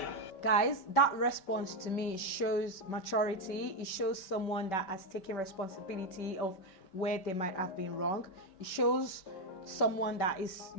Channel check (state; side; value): late; right; 5.2 ms